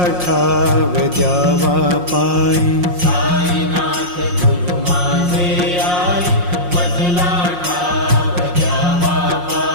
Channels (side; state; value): left; late; 5.6 ms